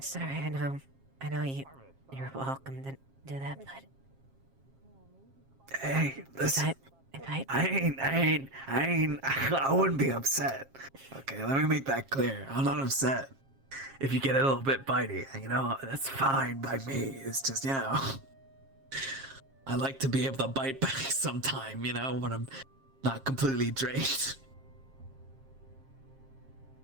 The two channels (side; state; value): left; late; 7.4 ms